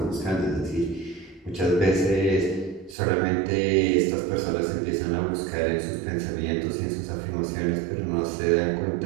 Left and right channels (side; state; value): left; drops out; at 3.0 s